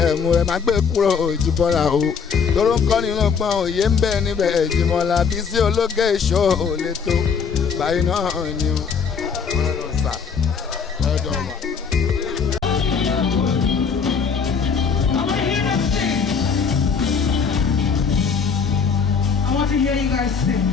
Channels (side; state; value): right; quieter; 6.1 dB